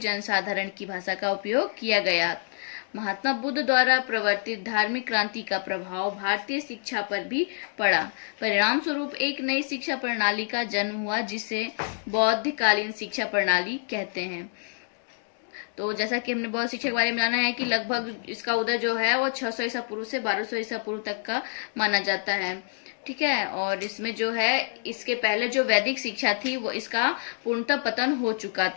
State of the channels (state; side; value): silent; right; digital silence